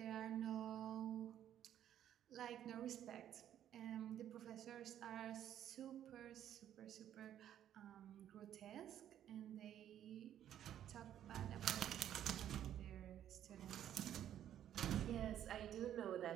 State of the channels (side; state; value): left; quieter; 10.8 dB